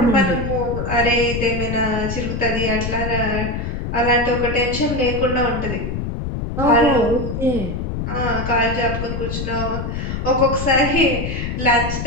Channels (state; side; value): noise; left; rumble, 4 dB below the sound